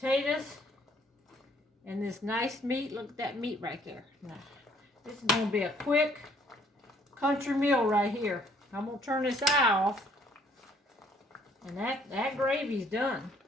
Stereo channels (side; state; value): both; normal; correlation 0.63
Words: and this nice meat. Look at that meat right there. Now, this is going to be a quick country meal right here. I'm going to turn this eye off. And that gravy's done.